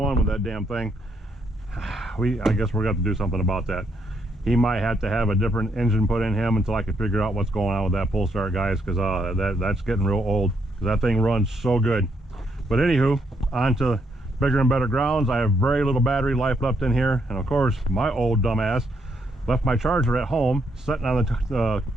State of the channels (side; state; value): both; normal; correlation 0.75